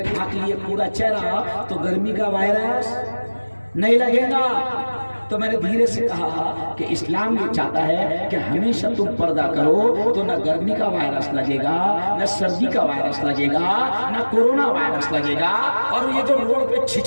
लिए पूरा चेहरा तो गर्मी का वायरस नहीं लगेगा। तो मैंने धीरे से कहा कि इस्लाम ये चाहता है कि हमेशा तुम पर्दा करो तो न गर्मी का वायरस लगेगा, न सर्दी का वायरस लगेगा, न कोरोना वायरस लगेगा। और ये जो रोड पे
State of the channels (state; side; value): inverted; both; correlation -1.00